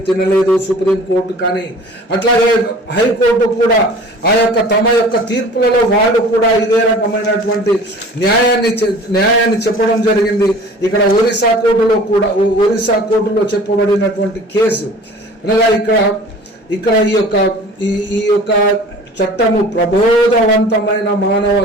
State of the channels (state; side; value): normal; both; correlation 0.44